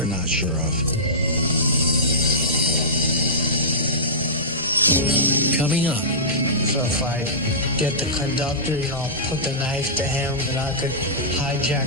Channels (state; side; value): normal; both; correlation -0.17